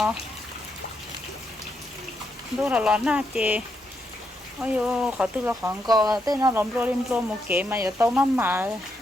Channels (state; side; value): normal; both; correlation 0.80